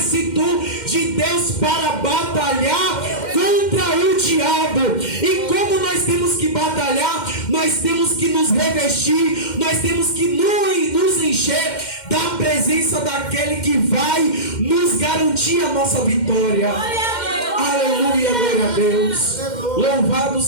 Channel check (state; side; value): late; right; 2.1 ms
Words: de Deus, para batalhar contra o diabo. E como nós temos que batalhar, nós temos que nos revestir, nós temos que nos encher da presença daquele que vai nos garantir a nossa vitória. Aleluia, glória a Deus. Louvado